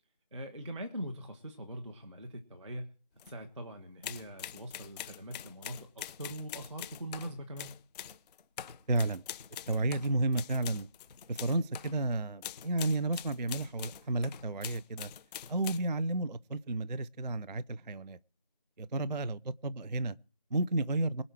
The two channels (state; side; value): inverted; both; correlation -0.69